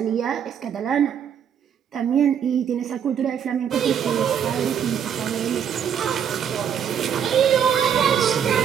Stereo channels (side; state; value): left; quieter; 8.3 dB